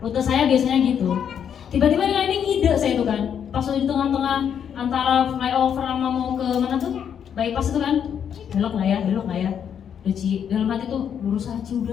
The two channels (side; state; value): right; quieter; 8.3 dB